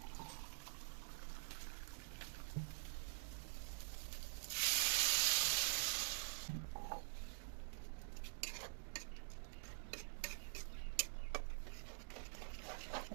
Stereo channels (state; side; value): silent; left; digital silence